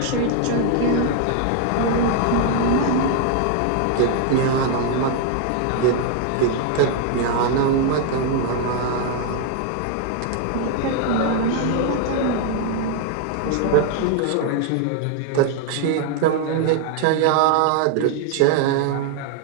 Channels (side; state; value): both; different; correlation 0.00